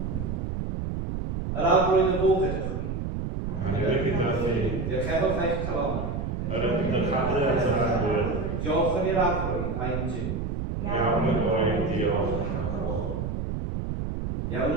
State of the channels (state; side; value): noise; right; rumble, 3 dB below the sound